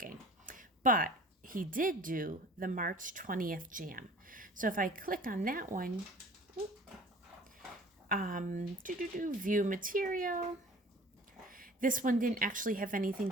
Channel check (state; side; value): normal; both; correlation 0.47